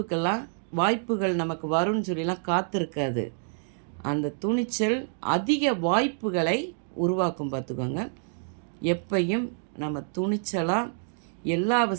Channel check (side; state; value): left; silent; digital silence